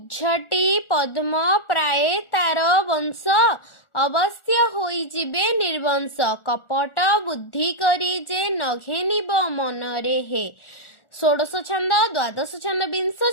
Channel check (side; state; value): right; late; 1.4 ms